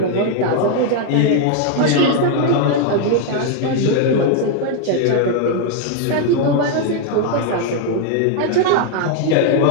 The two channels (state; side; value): different; both; correlation 0.00